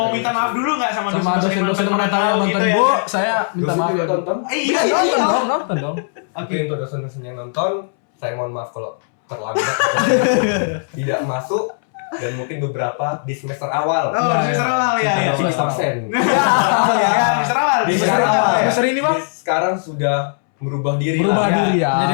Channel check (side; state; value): right; silent; 65 dB below the other